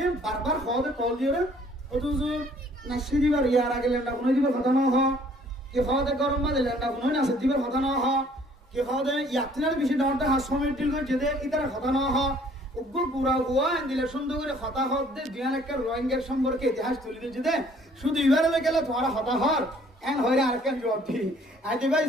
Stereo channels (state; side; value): normal; both; correlation 0.59